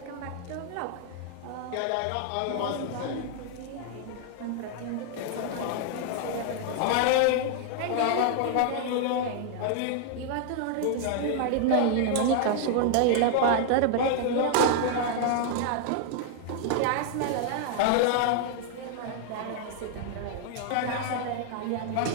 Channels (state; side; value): different; both; correlation 0.00